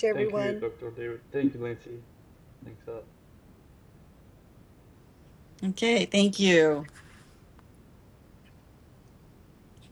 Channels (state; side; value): identical; both; correlation 1.00